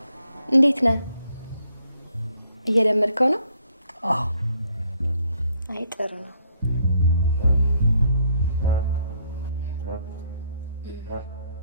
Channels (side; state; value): both; inverted; correlation -0.69